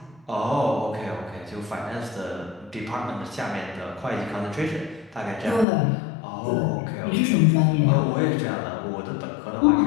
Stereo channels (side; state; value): right; drops out; at 5.7 s